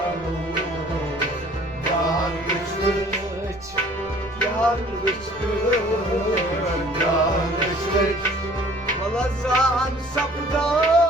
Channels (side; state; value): right; noise; rumble, 23 dB below the sound